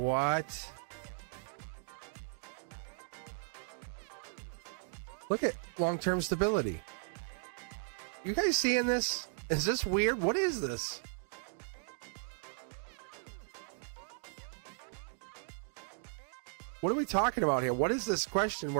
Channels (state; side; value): silent; left; digital silence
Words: Look at long-term stability. You guys seeing this? Is this weird? What is this? What are we talking about here? What is this question